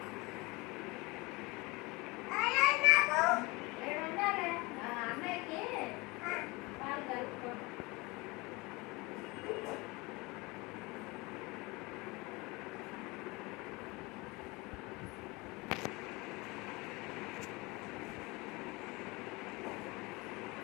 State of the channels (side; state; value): right; quieter; 24.5 dB